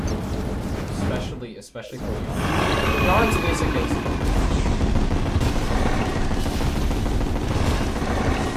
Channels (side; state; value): both; identical; correlation 1.00